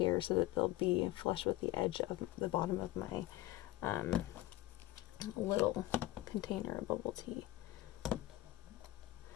so that they'll be flush with the edge of the bottom of my little container of bubble tea.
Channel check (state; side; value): quieter; right; 16.6 dB